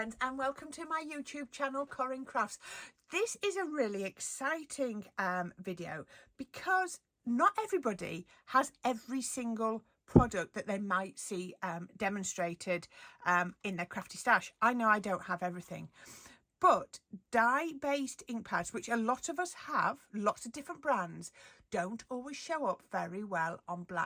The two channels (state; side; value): identical; both; correlation 1.00